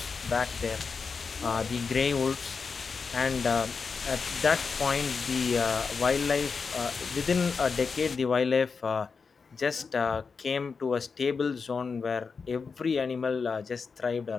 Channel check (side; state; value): right; quieter; 5.2 dB